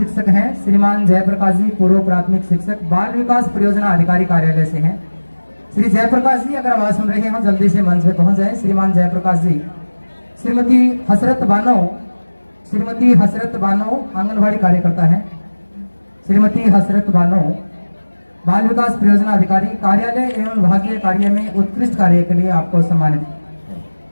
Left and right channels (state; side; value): inverted; both; correlation -1.00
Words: हैं। श्रीमान जयप्रकाश जी पूर्व प्राथमिक शिक्षक बाल विकास परियोजना अधिकारी कार्यालय से हैं। श्री जयप्रकाश जी अगर आवाज सुन रहे हैं जल्दी से मंच पे पहुंच जाएं। श्रीमान जयप्रकाश जी। श्रीमती हसरत बानो, श्रीमती हसरत बानो आंगनबाड़ी कार्यकर्ता है। श्रीमती हसरत बानो बाल विकास परियोजना अधिकारी कार्यालय एवं विभागीय कार्य में उत्कृष्ट कार्य के लिए आपको सम्मानित।